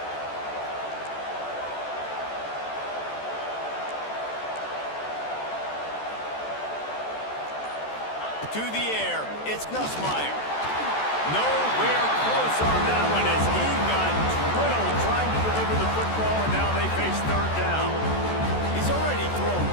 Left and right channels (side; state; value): right; late; 14 ms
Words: To the air, it's Nussmeier. Nowhere close on that one as he got drilled trying to deliver the football, and now they face third down. He's already thrown